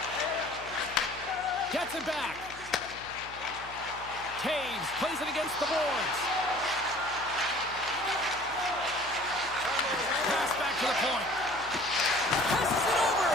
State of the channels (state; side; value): noise; left; hum, 20 dB below the sound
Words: Gets it back. Taves plays it against the boards. Pass back to the point. Passes it over.